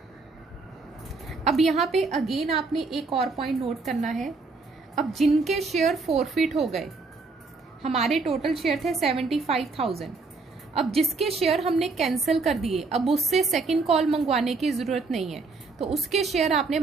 अब यहां पे अगेन आपने एक और पॉइंट नोट करना है। अब जिनके शेयर फोरफीट हो गए, हमारे टोटल शेयर थे 75,000, अब जिसके शेयर हमने कैंसिल कर दिए, अब उससे सेकंड कॉल मंगवाने की जरूरत नहीं है, तो उसके शेयर आपने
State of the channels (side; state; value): left; quieter; 4.0 dB